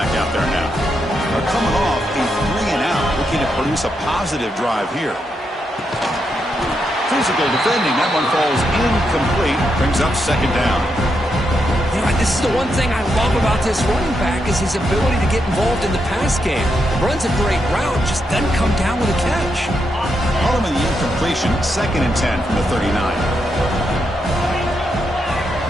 out there now. They're coming off a 3-and-out, looking to produce a positive drive here. Physical defending. That one falls incomplete. Brings up second down. You know, this is the one thing I love about this running back is his ability to get involved in the pass game. Runs a great route, just doesn't come down with a catch. Harmon the incompletion. Second and 10 from the 39.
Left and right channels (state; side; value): normal; both; correlation 0.82